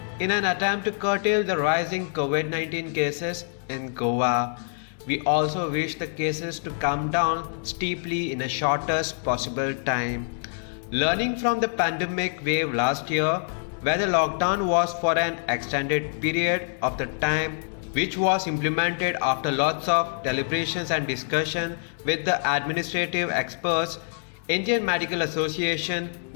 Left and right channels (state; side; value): silent; right; digital silence